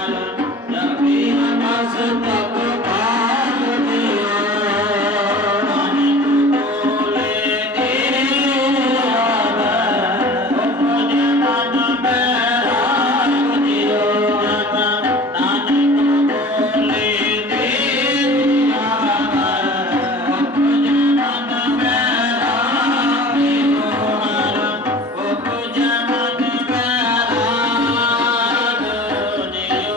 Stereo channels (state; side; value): normal; both; correlation 0.42